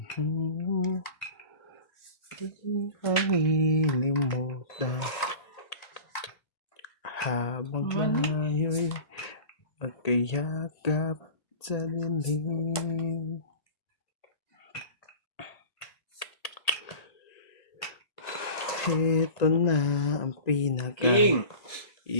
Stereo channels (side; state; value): right; late; 1.8 ms